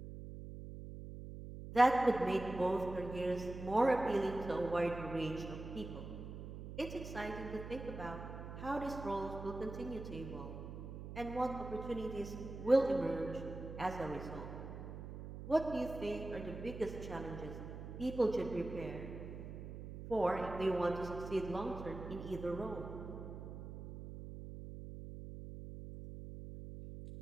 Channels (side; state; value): right; noise; hum, 9 dB below the sound